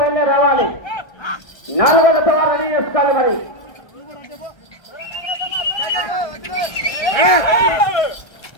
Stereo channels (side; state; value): right; late; 1.3 ms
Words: రావాలి. 4వ జత వారు రెడీ చేసుకోవాలి. మరి